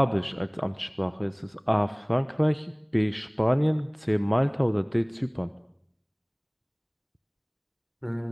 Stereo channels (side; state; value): both; identical; correlation 1.00